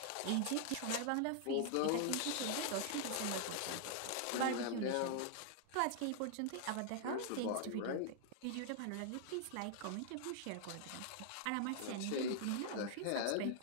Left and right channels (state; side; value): different; both; correlation 0.00